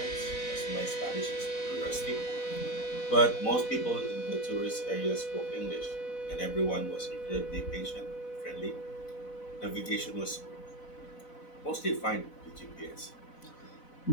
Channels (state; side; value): late; right; 4.0 ms